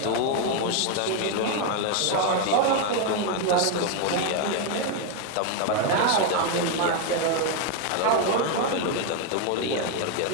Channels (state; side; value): different; both; correlation 0.01